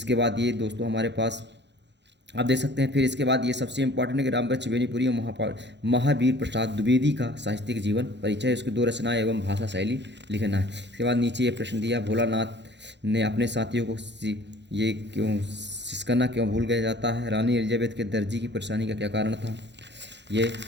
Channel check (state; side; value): late; left; 0.51 ms